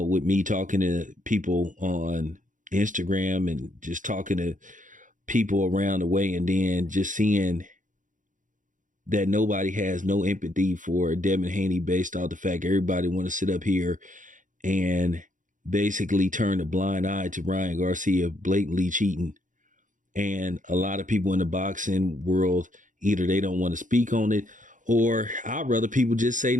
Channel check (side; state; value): left; late; 0.37 ms